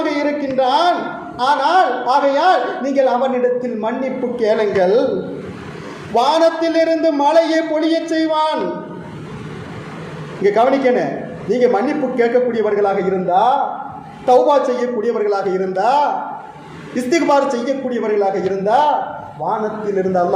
இருக்கின்றான். ஆனால் ஆகையால் நீங்கள் அவனிடத்தில் மன்னிப்பு கேளுங்கள், வானத்திலிருந்து மழையை பொழிய செய்வான். இங்க கவனிக்கணும், நீங்க மன்னிப்பு கேட்கக்கூடியவர்களாக இருந்தா, தௌபா செய்யக்கூடியவர்களாக இருந்தா, இஸ்திக்பார் செய்யக்கூடியவர்களாக இருந்தா, வானத்திலிருந்து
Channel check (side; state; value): both; identical; correlation 1.00